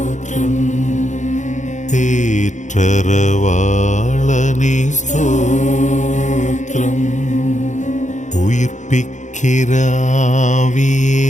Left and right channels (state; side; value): late; right; 0.35 ms